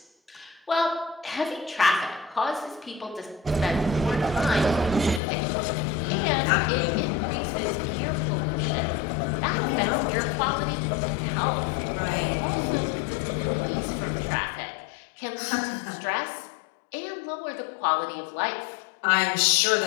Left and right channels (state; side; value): drops out; right; at 5.2 s